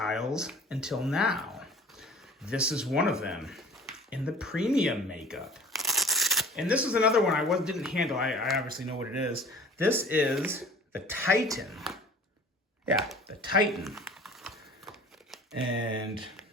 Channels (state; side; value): normal; both; correlation 0.46